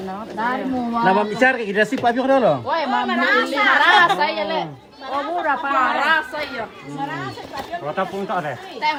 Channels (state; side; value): identical; both; correlation 1.00